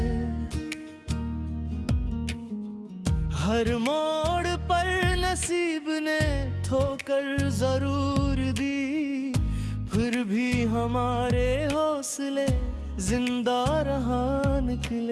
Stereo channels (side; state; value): both; identical; correlation 1.00